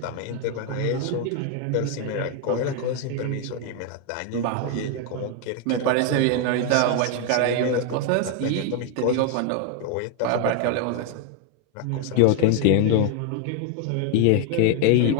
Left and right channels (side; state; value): both; different; correlation 0.01